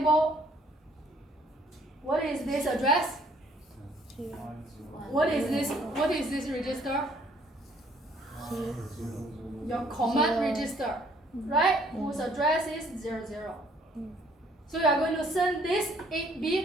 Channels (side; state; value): both; normal; correlation 0.62